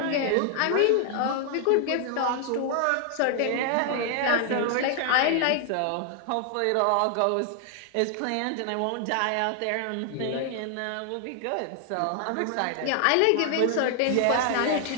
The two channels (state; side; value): different; both; correlation 0.00